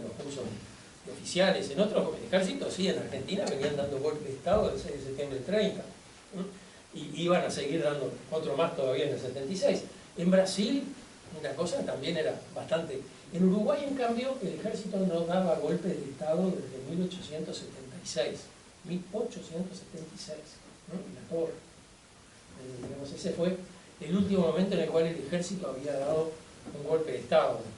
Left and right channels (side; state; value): both; identical; correlation 1.00